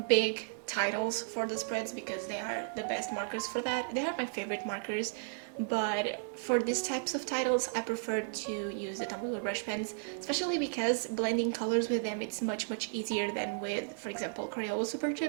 big titles for the spreads, because they are the best markers for that. They are my favorite markers, but for these types of titles I prefer to use the Tombow brush pens, especially because blending colors with them it's much easier than with, for example, Crayola Super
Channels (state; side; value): silent; left; digital silence